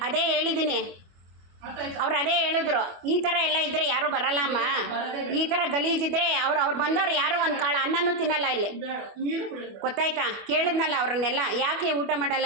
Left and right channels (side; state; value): left; late; 25 ms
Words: ಅದೇ ಹೇಳಿದ್ದೀನಿ. ಅರ್ಥ ಆಯ್ತಾ? ಅವ್ರು ಅದೇ ಹೇಳಿದ್ರು, ಈ ಥರ ಎಲ್ಲ ಇದ್ರೆ ಯಾರು ಬರಲ್ಲ ಅಮ್ಮ, ಈ ಥರ ಗಲೀಜಿದ್ರೆ ಅವ್ರು ಬಂದವ್ರು ಯಾರು ಒಂದು ಕಾಳು ಅನ್ನನೂ ತಿನ್ನಲ್ಲ ಇಲ್ಲಿ, ಬೇಡ ನೀರು ಕುಡಿಯೋದು. ಗೊತ್ತಾಯ್ತಾ? ಕೇಳಿದ್ನಲ್ಲ ಅವ್ರನ್ನೆಲ್ಲ, ಯಾಕೆ ಊಟ